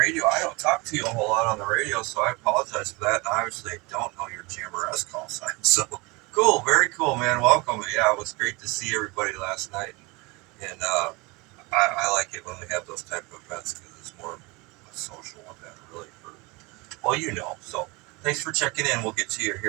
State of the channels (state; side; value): quieter; left; 25.8 dB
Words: I don't talk to you a whole lot on the radio, so I apologize for that. And obviously, I don't know your GMRS call sign. So, cool, very cool, man. Welcome. Yeah, it was great to see everybody last night. And I like it when we have those type of events because it's more of a social event, really. Well, you know. So, thanks for checking in. We'll get to you